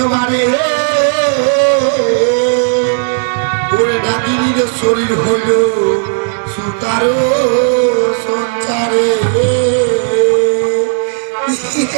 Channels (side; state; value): left; silent; 72 dB below the other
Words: ওরে নাগিনীর শরীর হইল সুতারো সঞ্চারে।